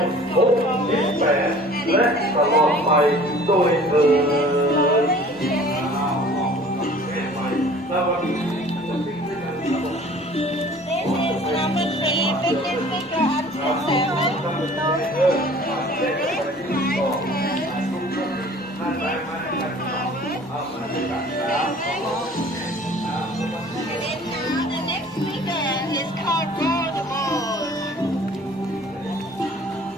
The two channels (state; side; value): normal; both; correlation 0.49